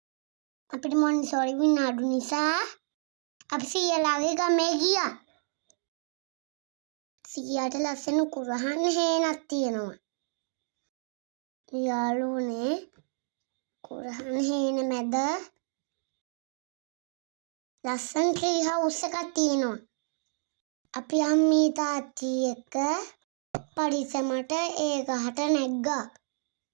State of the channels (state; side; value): silent; left; 58 dB below the other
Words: අපිට මොන්ටිසෝරි විනාඩු නිසා අපි සීයාලාගේ ගමේ ගියා. සීයාට ලස්සන කුරහන් හේනක් තියෙනවා. යාළුවනේ කුරහන් හේන මැද ලස්සන ට්‍රී හවුස් එකක් තියෙනවා. අපි අම්මී තාත්ති එක්ක පරිස්සමට ඒ ගහට නැග්ගා.